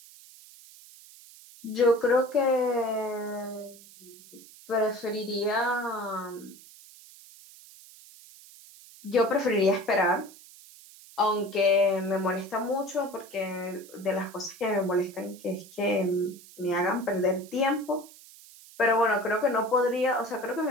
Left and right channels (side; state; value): right; noise; hiss, 21 dB below the sound